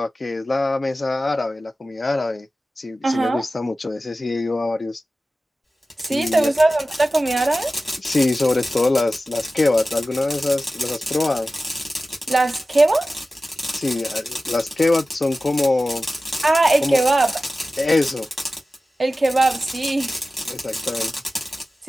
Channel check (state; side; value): normal; both; correlation 0.95